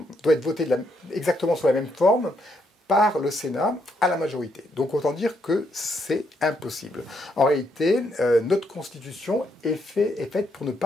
voté exactement sous la même forme par le Sénat à la majorité. Donc autant dire que c'est impossible. En réalité, notre Constitution est faite pour ne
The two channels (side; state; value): both; normal; correlation 0.75